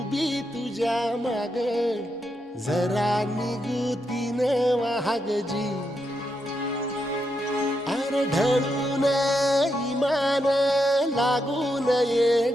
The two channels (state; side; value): normal; both; correlation 0.83